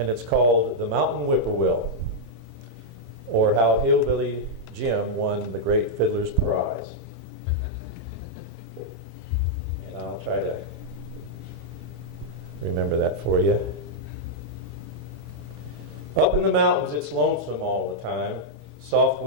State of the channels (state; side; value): late; left; 1.7 ms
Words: it's called The Mountain Whippoorwill, or How Hillbilly Jim Won the Great Fiddler's Prize. And I'll try to remember that for you. Up in the mountains, it's lonesome all the time, soft